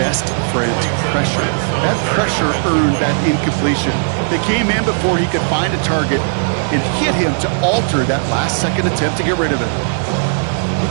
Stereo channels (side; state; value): left; silent; digital silence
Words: friend, pressure. That pressure earned that incompletion. They came in before he could find a target and hit him to alter that last-second attempt to get rid of it.